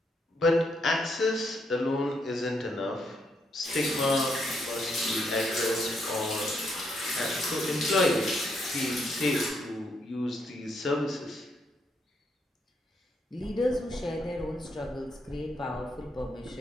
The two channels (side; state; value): both; normal; correlation 0.76